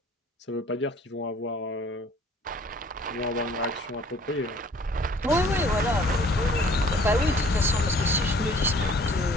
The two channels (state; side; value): normal; both; correlation 0.54